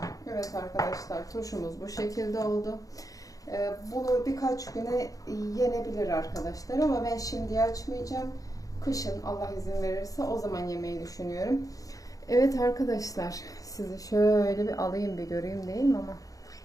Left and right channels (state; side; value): late; right; 0.17 ms